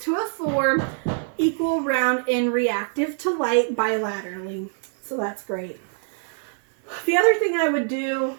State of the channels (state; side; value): silent; left; 57 dB below the other